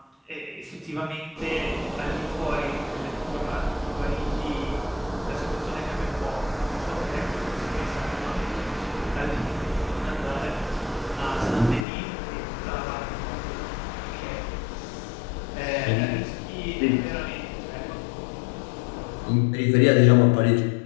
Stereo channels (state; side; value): drops out; right; at 11.9 s